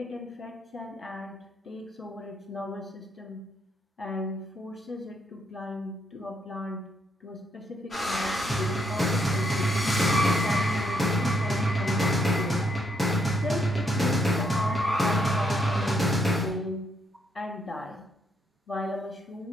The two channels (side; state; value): both; normal; correlation 0.75